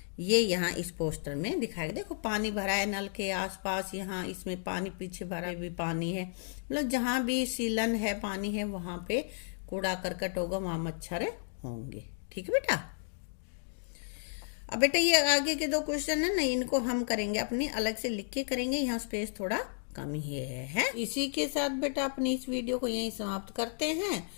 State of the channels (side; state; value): right; silent; digital silence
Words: ये यहाँ इस पोस्टर में दिखाया गया। देखो पानी भरा है नल के आसपास, यहाँ इसमें पानी, पीछे भरा भी पानी है, मतलब जहाँ भी सीलन है, पानी है, वहां पे कूड़ा करकट होगा, वहां मच्छर होंगे। ठीक है बेटा। अब बेटा ये आगे के दो क्वेश्चन है ना, इनको हम करेंगे अपनी अलग से लिख के करेंगे, यहाँ स्पेस थोड़ा कम ही है। इसी के साथ बेटा अपनी इस वीडियो को यहीं समाप्त करते हैं,